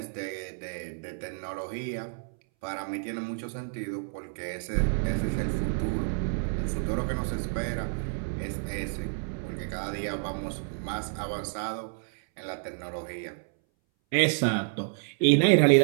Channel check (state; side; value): silent; left; 58 dB below the other